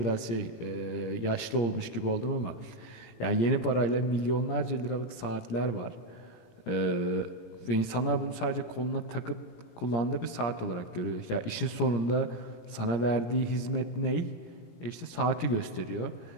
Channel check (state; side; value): late; right; 17 ms